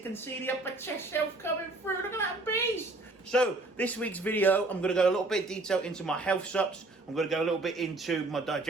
see the upper chest shelf coming through, look at that beast. So, this week's video, I'm going to go a little bit detail into my health sups. I'm going to go a little bit into my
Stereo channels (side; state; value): left; quieter; 3.0 dB